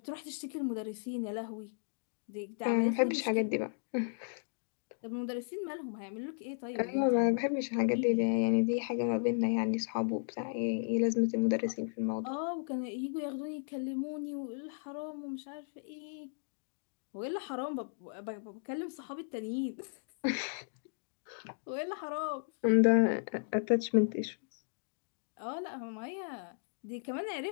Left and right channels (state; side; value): silent; right; digital silence